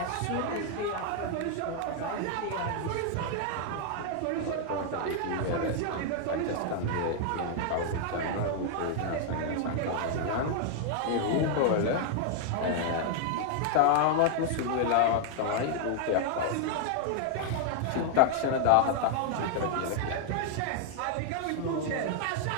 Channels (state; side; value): different; both; correlation 0.00